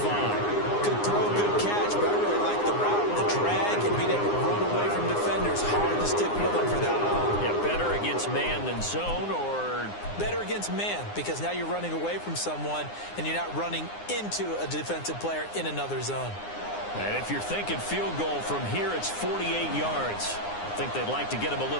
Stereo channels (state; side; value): late; right; 9.7 ms